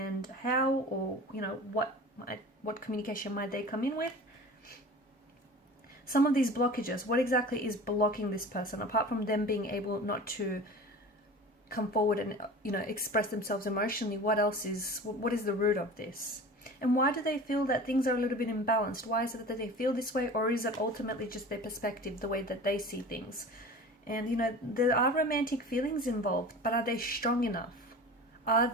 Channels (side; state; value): both; normal; correlation 0.37